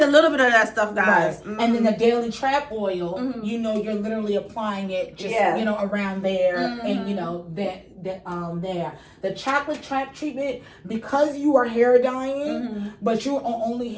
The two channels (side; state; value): both; identical; correlation 1.00